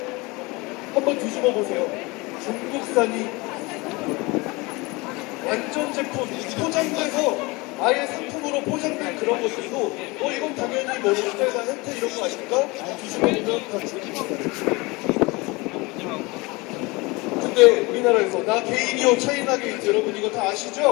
한번 뒤집어 보세요. 중국산이 완전 제품 포장돼서 아예 상품으로 포장된 그런 것들도 이건 당연히 뭐 롯데나 혜태 이런 거 아닐까? 뒤집어보면 다 중국산. 근데 우리나라에서 나 개인이요 차이나 게이트 여러분 이거 다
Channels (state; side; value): quieter; right; 24.6 dB